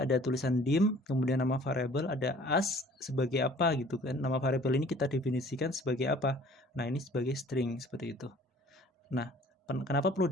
Ada tulisan dim, kemudian nama variabel, ada as sebagai apa gitu kan. Nama variabel ini kita definisikan sebagai apa. Nah, ini sebagai string seperti itu. Nah, kenapa perlu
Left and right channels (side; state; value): both; normal; correlation 0.52